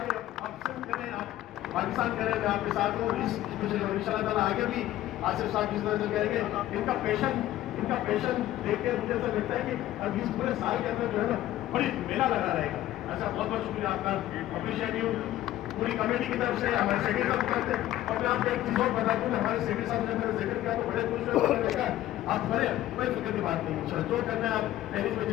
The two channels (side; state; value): right; quieter; 14.1 dB